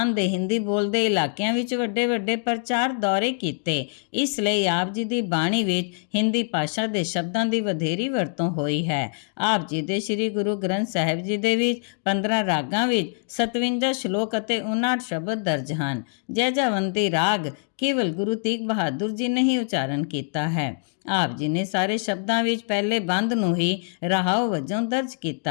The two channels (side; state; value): right; silent; 56 dB below the other